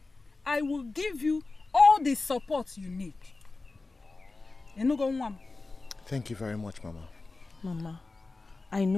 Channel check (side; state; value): right; quieter; 3.5 dB